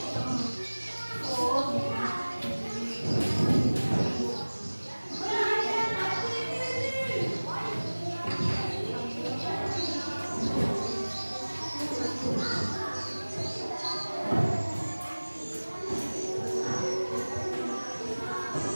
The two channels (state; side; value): inverted; both; correlation -1.00